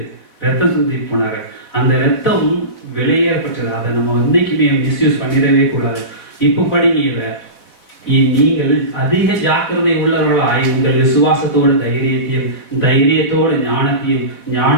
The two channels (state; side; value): late; right; 4.0 ms